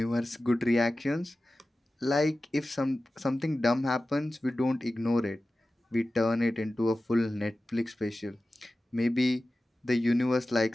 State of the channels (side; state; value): both; normal; correlation 0.95